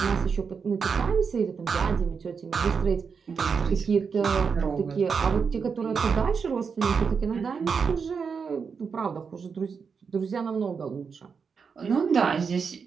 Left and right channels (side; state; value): left; quieter; 5.8 dB